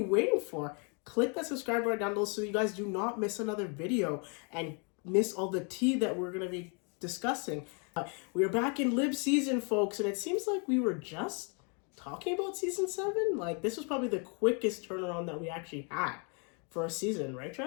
waiting for? Click that subscribe button down below so you guys do not miss another video and miss all the tea that we're going to be discussing. We are back in Lib season, folks, and it seems like we were just talking about season 7. Like, this was probably the quickest turnaround that we actually had for a season, right,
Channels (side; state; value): right; quieter; 36.0 dB